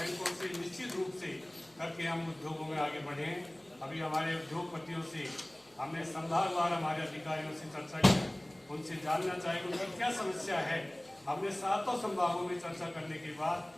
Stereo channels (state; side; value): noise; right; hum, 30 dB below the sound